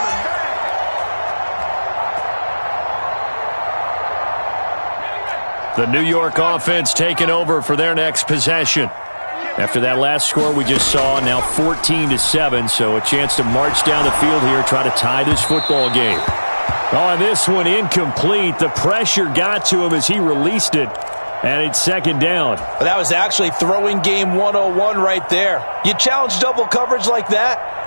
The New York offense taking over for their next possession. After that last score we just saw, now 14-7, so a chance to march down the field here, try to tie this football game. On this one, incomplete. The pressure got to him as he released it. And it's 2nd down. That was actually throwing game 101 right there. You challenge double coverage like that,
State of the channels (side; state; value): both; inverted; correlation -1.00